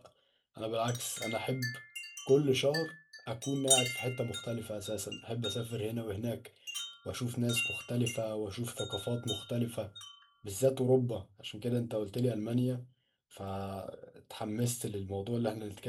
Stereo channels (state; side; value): identical; both; correlation 1.00